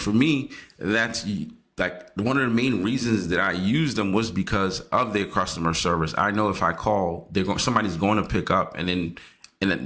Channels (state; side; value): identical; both; correlation 1.00